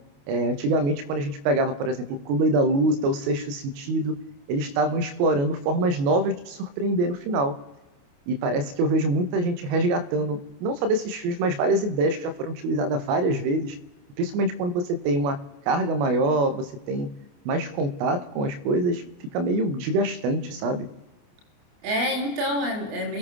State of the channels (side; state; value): left; late; 28 ms